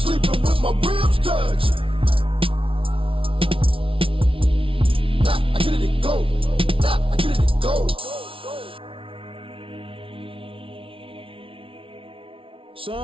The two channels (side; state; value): left; late; 0.26 ms